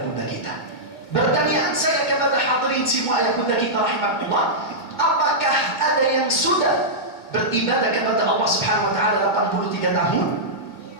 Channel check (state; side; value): late; right; 2.1 ms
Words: bunda kita. Pertanyaan saya kepada hadirin semua ayah bunda kita rahimahullah, apakah ada yang sudah beribadah kepada Allah subhanahu wa ta'ala 83 tahun?